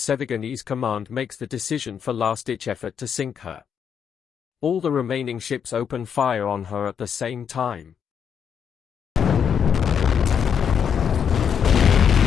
command makes the decision for last-ditch effort to sink her. All the remaining ships open fire on her at the same time.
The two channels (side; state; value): right; quieter; 7.7 dB